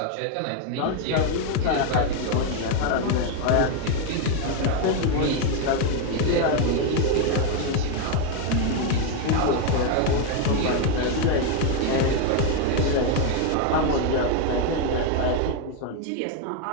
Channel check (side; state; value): both; different; correlation 0.01